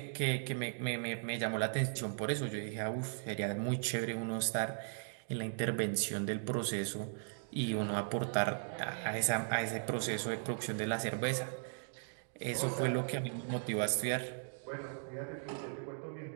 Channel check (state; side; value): silent; left; digital silence